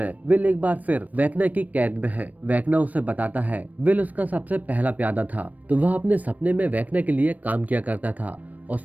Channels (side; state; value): left; late; 0.076 ms